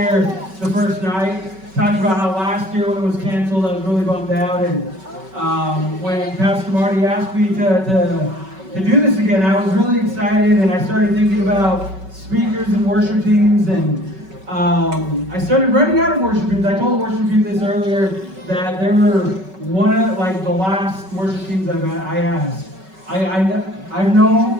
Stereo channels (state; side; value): late; left; 5.3 ms